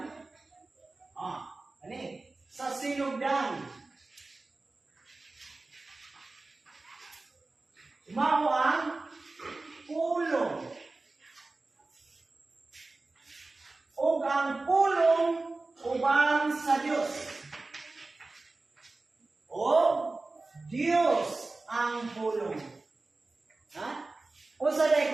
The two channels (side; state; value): left; quieter; 3.3 dB